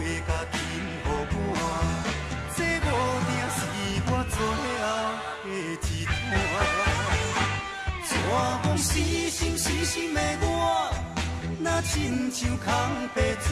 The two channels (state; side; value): identical; both; correlation 1.00